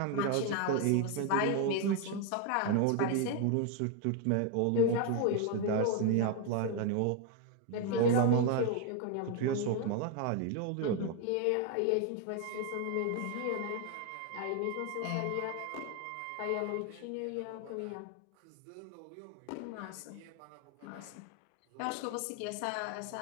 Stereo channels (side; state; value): both; different; correlation 0.01